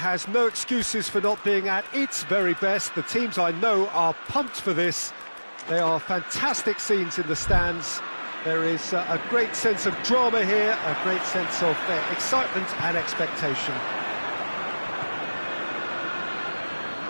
no excuses for not being at its very best. The teams I know are pumped for this. They are fantastic scenes in the stands. There is a great sense of drama here, a great sense of excitement and expectation.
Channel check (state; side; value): inverted; both; correlation -1.00